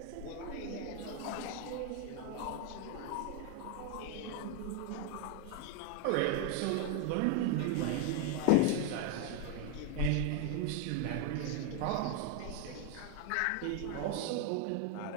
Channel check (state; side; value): different; both; correlation 0.02